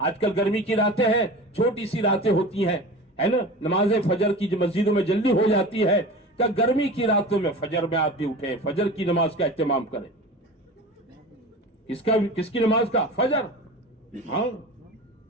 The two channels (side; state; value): both; normal; correlation 0.34